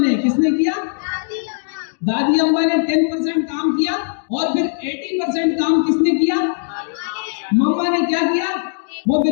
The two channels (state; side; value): silent; right; digital silence